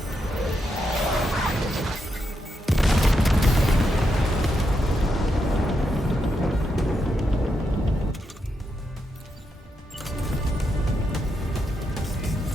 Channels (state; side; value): normal; both; correlation 0.83